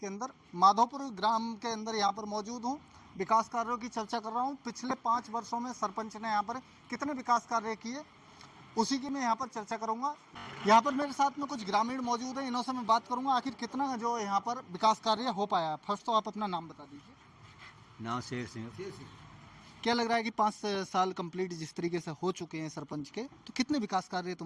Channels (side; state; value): both; identical; correlation 1.00